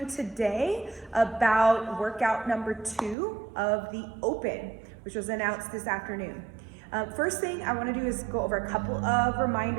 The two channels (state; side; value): drops out; left; at 3.2 s